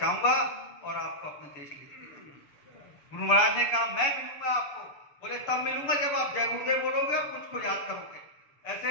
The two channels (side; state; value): right; late; 6.8 ms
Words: और आपको अपने देश ले जाऊंगा। गुरु महाराज ने कहा मैं मिलूंगा आपको। बोले तब मिलूंगा जब आप जय गुरुदेव बोलोगे और मुझको याद करोगे।